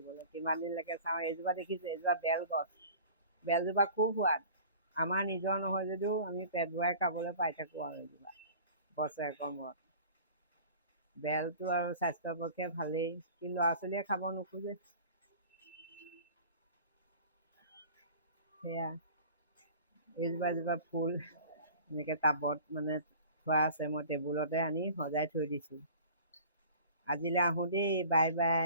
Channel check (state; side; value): inverted; both; correlation -0.43